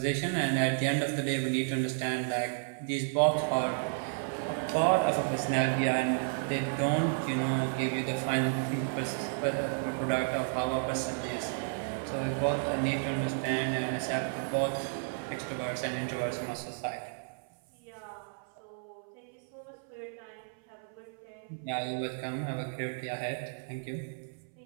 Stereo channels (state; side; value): silent; left; 56 dB below the other